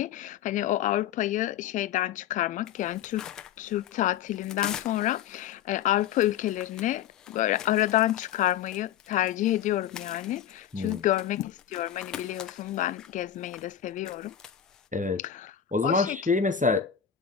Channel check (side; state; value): right; quieter; 9.8 dB